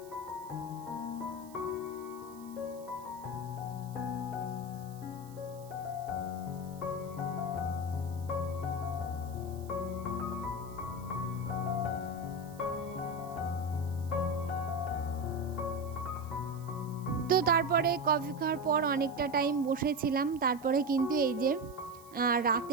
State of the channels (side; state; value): right; noise; hiss, 23 dB below the sound